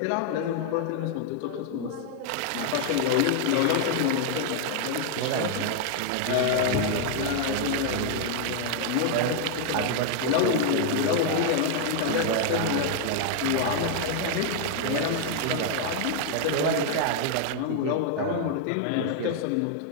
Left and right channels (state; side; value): different; both; correlation 0.00